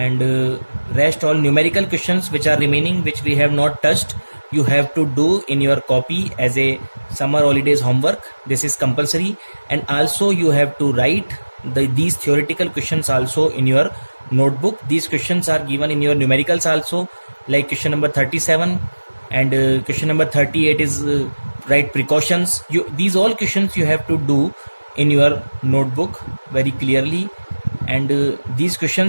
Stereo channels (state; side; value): inverted; both; correlation -1.00